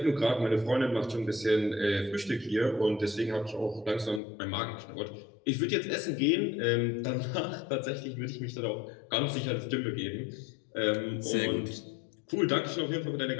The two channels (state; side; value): drops out; right; at 4.2 s